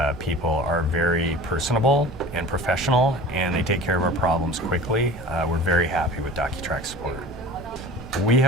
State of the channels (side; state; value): both; normal; correlation 0.40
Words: people are very personable and professional, and they take care of our problems quickly. We're very happy with DocuTrack support. We